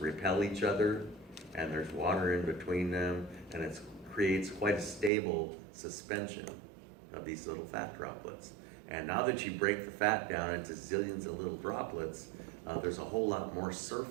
repel each other, and there's water in between them, and it creates quite a stable suspension of these little fat droplets. And now that you break the fat down into zillions of little droplets, there's a whole lot more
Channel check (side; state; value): left; drops out; at 5.1 s